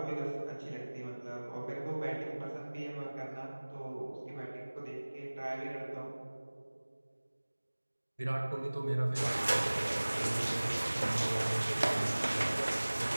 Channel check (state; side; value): inverted; both; correlation -1.00